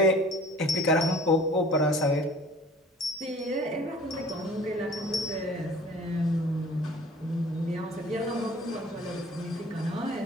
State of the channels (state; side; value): normal; both; correlation 0.49